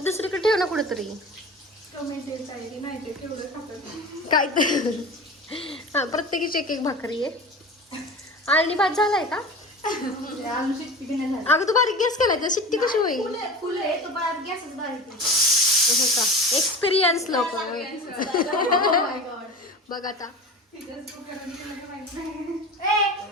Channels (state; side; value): normal; both; correlation 0.33